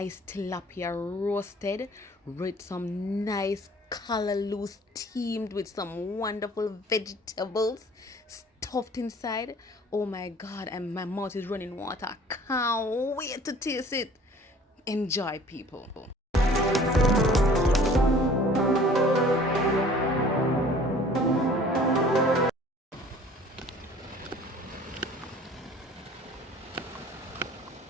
tilapia roasted with some nice callaloo steamed with some wonderful vegetables stuffed inside. Oh my god, and my mouth is running water. Can't wait to taste it. Enjoy, people.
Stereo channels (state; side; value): normal; both; correlation 0.50